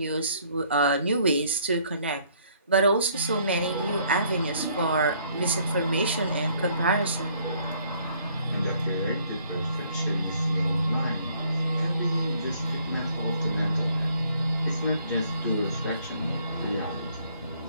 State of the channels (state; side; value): inverted; both; correlation -0.63